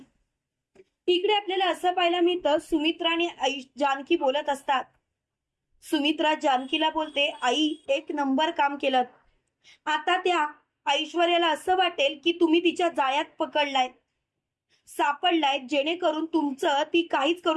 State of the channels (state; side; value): identical; both; correlation 1.00